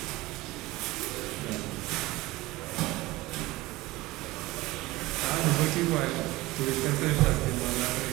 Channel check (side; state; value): left; quieter; 19.6 dB